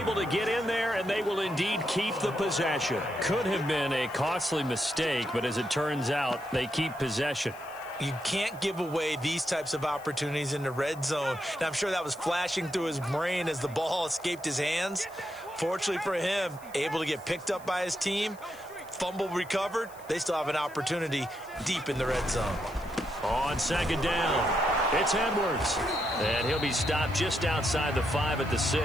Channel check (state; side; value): noise; left; hiss, 23 dB below the sound